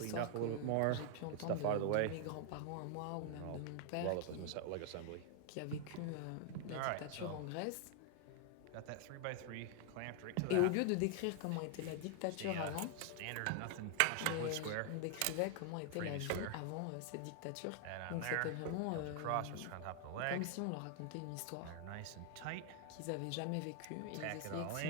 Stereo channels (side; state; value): both; different; correlation 0.00